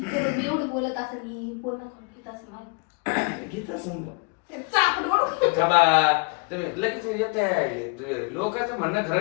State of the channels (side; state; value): right; quieter; 32.8 dB